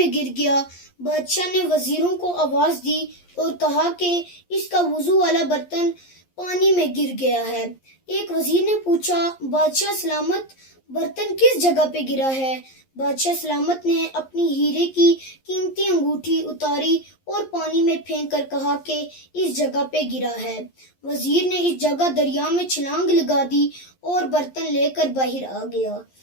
گر گیا۔ بادشاہ نے وزیروں کو آواز دی اور کہا کہ اس کا وضو والا برتن پانی میں گر گیا ہے۔ ایک وزیر نے پوچھا، بادشاہ سلامت، برتن کس جگہ پہ گرا ہے؟ بادشاہ سلامت نے اپنی ہیرے کی قیمتی انگوٹھی اتاری اور پانی میں پھینک کر کہا کہ اس جگہ پہ گرا ہے۔ وزیر نے اس جگہ دریا میں چھلانگ لگا دی اور برتن لے کر باہر آ گیا۔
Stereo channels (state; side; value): late; right; 11 ms